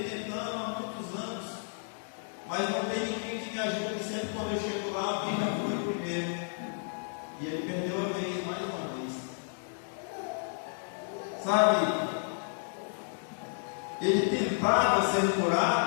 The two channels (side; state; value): right; silent; 57 dB below the other